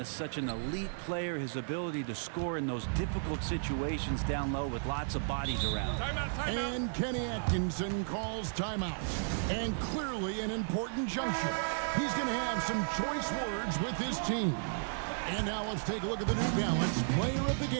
such an elite player, his ability to score in those difficult situations down low with lots of bodies around. Timeout. And Kenny Atkinson calls timeout. And clearly an important juncture. He's going to have some choice words with his team. And now let's take a look at the New Balance player of the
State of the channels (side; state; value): left; silent; 55 dB below the other